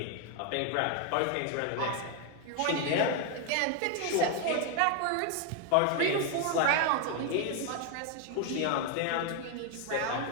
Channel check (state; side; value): different; both; correlation 0.01